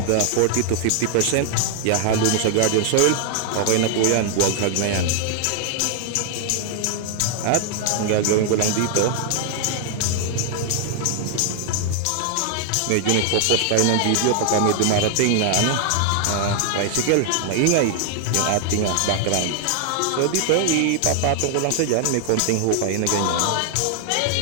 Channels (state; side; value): different; both; correlation 0.00